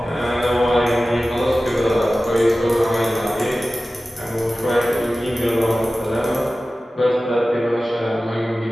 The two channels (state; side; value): normal; both; correlation 0.96